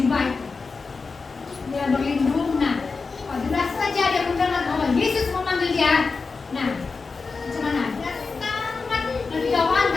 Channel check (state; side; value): quieter; right; 4.4 dB